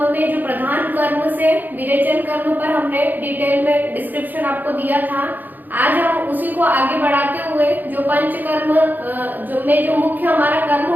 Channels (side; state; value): left; late; 0.086 ms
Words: में जो प्रधान कर्म से विरेचन कर्म पर हमने डिटेल में डिस्क्रिप्शन आपको दिया था। आज हम उसी को आगे बढ़ाते हुए जो पंचकर्म जो मुख्य हमारा कर्म